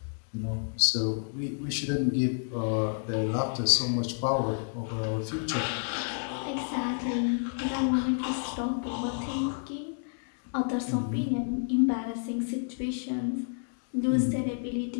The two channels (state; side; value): silent; right; 58 dB below the other